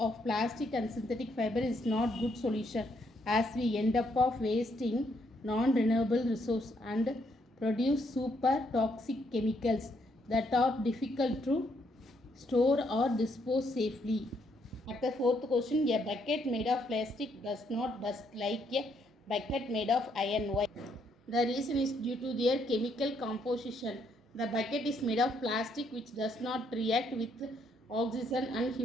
of plastic and synthetic fiber is not good solution as we end up of wasting non-renewable resource and produce super toxic chemicals that are difficult to store or dispose safely. At the fourth question, a bucket made of plastic does not dust like a bucket made of iron. Why? The reason is due to their chemical composition. The bucket is made of plastic which does not react with oxygen and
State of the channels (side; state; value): both; normal; correlation 0.73